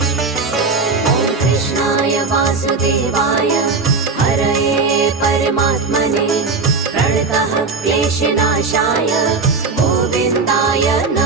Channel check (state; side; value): quieter; left; 4.3 dB